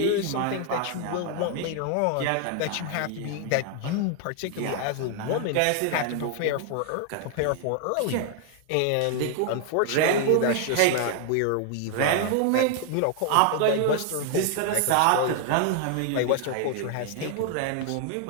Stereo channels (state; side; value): different; both; correlation 0.00